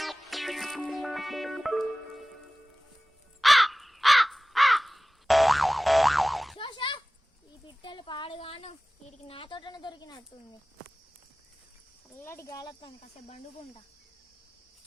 ఈ పిట్టలు పాడుగాను వీడికి నా తోటనే దొరికినట్టుంది. చల్లటి గాలత్తాను, కాసేపు బండుకుంటా.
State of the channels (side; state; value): both; normal; correlation 0.98